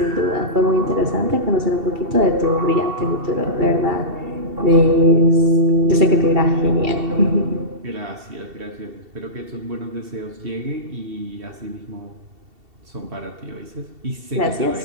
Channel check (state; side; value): late; left; 2.7 ms